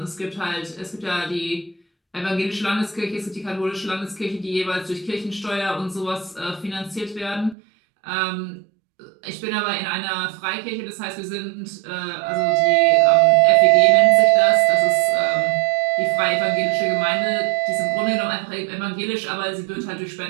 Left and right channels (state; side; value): drops out; left; at 7.6 s